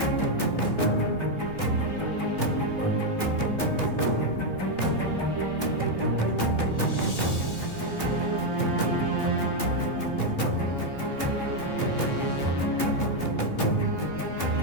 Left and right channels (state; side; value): late; right; 3.0 ms